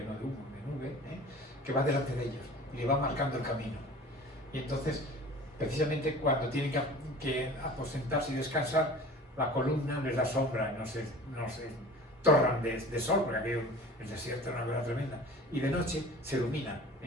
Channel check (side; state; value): both; normal; correlation 0.41